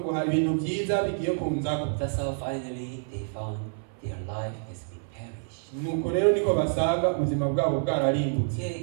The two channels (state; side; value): silent; left; 58 dB below the other